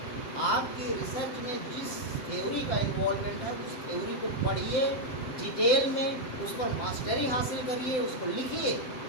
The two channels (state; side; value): late; right; 7.8 ms